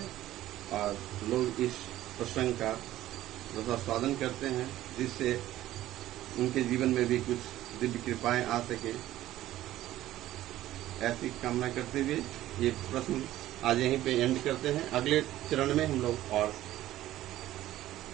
और लोग इस प्रसंग का रसास्वादन करते हैं जिससे उनके जीवन में भी कुछ दिव्य कृपाएं आ सके। ऐसी कामना करते हुए ये प्रश्न आज यहीं पे एंड करते हैं। अगले चरण में हम लोग और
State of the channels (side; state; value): left; quieter; 14.3 dB